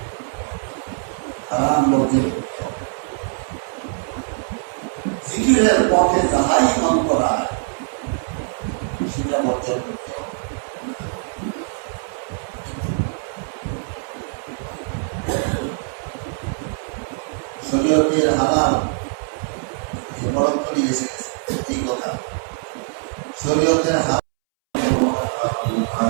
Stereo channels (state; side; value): silent; left; 64 dB below the other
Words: হারাম বর্জন করতে হবে। জিকিরের পথে যাহাই মন করায় সেটা বর্জন করতে হবে। শরীয়তের হালাল বরং করে এসে গেছে, এই কথা শরীয়তের হালাল